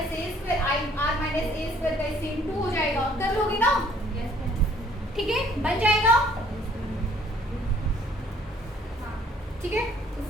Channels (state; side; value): normal; both; correlation 0.60